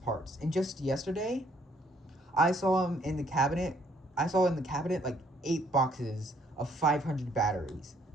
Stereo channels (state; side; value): normal; both; correlation 0.66